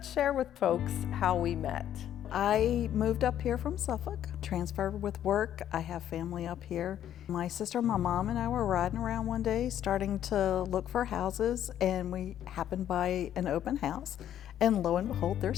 share with folks how we met. I moved up here from Suffolk, transferred with work. I have family up here. My sister, my mom, and I were riding around one day starting to look for houses, and we happened by an open house, and lo and behold,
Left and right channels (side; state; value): right; quieter; 10.8 dB